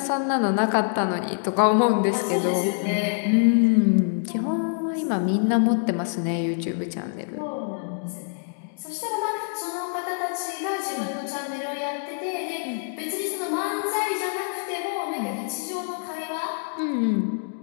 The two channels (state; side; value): silent; right; digital silence